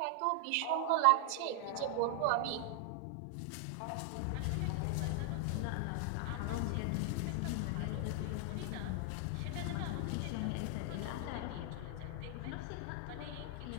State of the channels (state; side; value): different; both; correlation 0.00